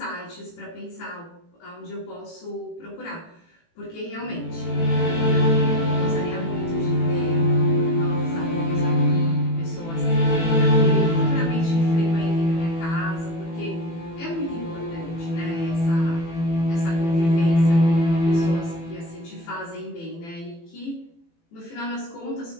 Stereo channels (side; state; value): right; late; 18 ms